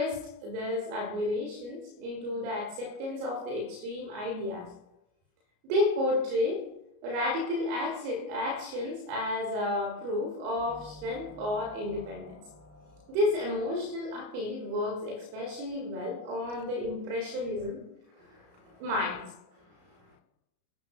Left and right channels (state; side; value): late; left; 33 ms